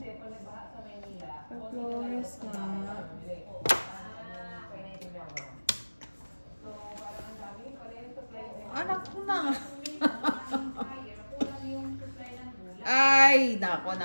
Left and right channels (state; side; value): inverted; both; correlation -1.00